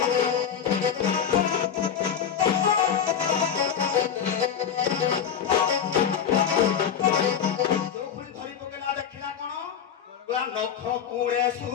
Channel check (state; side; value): quieter; right; 8.1 dB